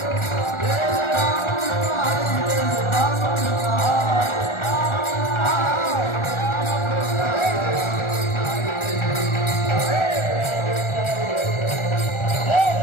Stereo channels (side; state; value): right; late; 1.4 ms